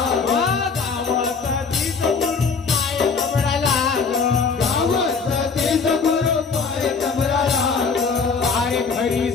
गावात तीच गुरु माय कमरा लाग गावात तीच गुरु पाय तमरा लाग अरे घरी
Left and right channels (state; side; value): quieter; right; 5.1 dB